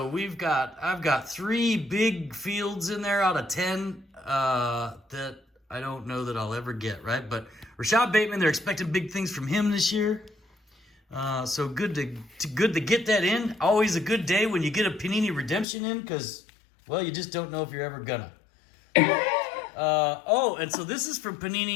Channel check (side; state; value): right; drops out; at 15.7 s